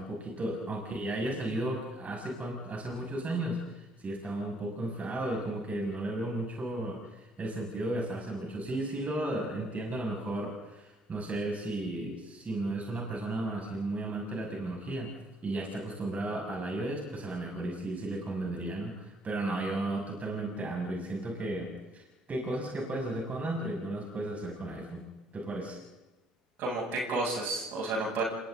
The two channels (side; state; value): both; normal; correlation 0.66